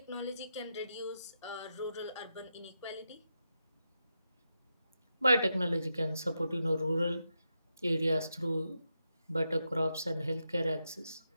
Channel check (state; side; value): inverted; both; correlation -0.86